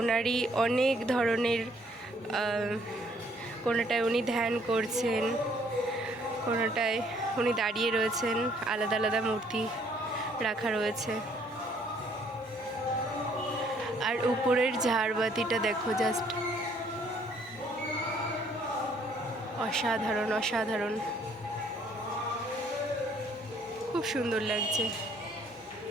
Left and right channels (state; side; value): normal; both; correlation 0.64